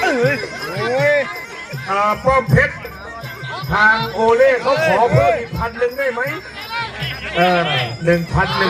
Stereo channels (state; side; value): identical; both; correlation 1.00